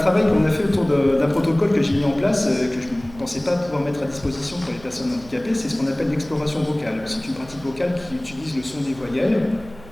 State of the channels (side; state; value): right; noise; hum, 19 dB below the sound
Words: qu'on a fait autour d'un protocole que j'ai mis en place, que je ne pensais pas pouvoir mettre à disposition pour les personnes handicapées, c'est ce qu'on appelle l'exploration vocale. C'est une pratique vocale qui utilise le son des voyelles,